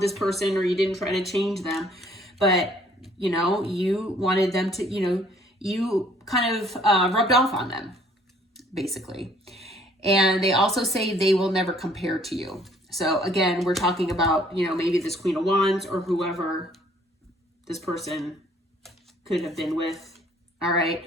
person or you didn't try to change them, but, you wanted them to, you kind of rubbed off on them, basically. And they also say they will never compare to you. So again, we're talking about, maybe this Queen of Wands or whoever this person could have been with. All right.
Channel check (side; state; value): both; normal; correlation 0.60